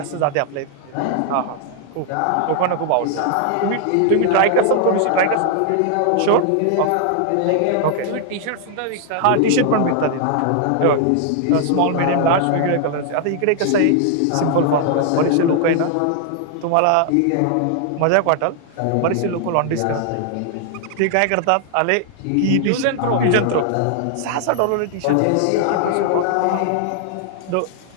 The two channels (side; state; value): both; different; correlation 0.00